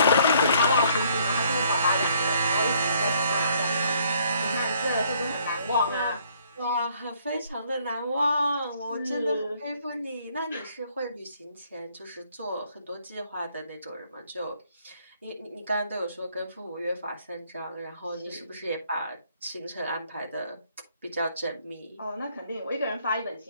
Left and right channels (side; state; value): both; inverted; correlation -0.64